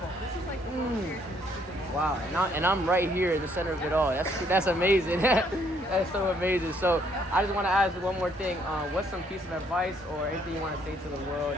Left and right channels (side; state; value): both; normal; correlation 0.68